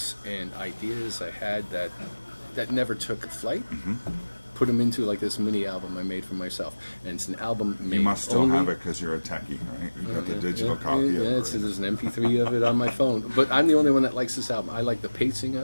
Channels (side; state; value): both; inverted; correlation -1.00